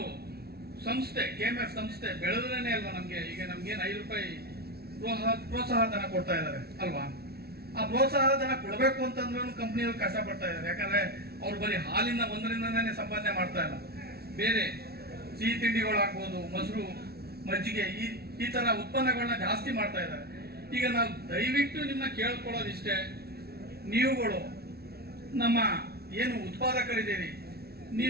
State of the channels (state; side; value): late; left; 0.45 ms